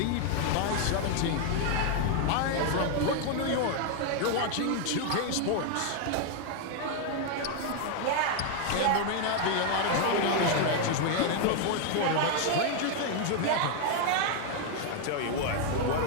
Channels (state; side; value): different; both; correlation 0.01